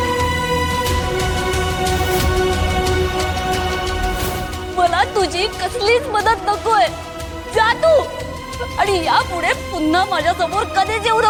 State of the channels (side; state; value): both; identical; correlation 1.00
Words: मला तुझी कसलीच मदत नकोय, जा तू आणि यापुढे पुन्हा माझ्या समोर कधीच येऊ